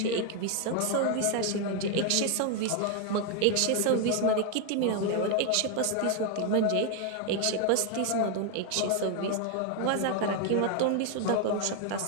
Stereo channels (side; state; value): both; different; correlation 0.01